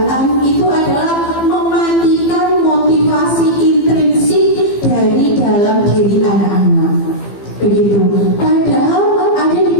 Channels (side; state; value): right; late; 15 ms